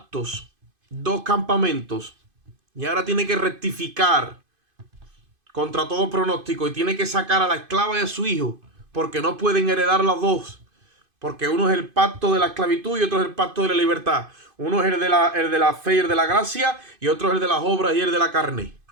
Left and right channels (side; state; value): left; late; 2.5 ms